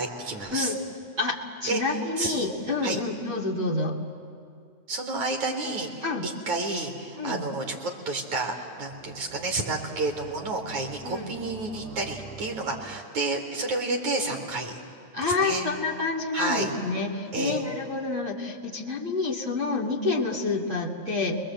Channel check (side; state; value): left; late; 9.4 ms